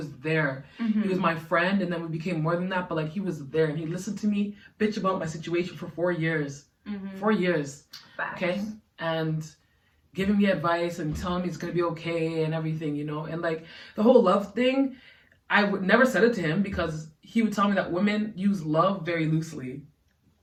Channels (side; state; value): both; identical; correlation 1.00